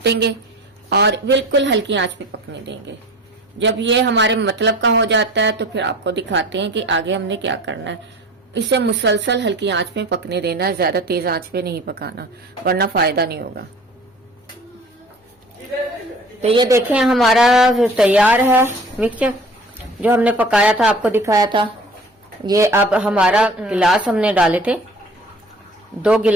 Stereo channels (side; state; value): both; normal; correlation 0.44